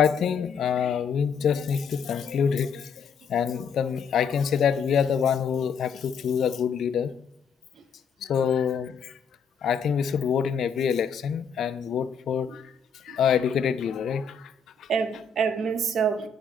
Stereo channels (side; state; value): right; quieter; 5.4 dB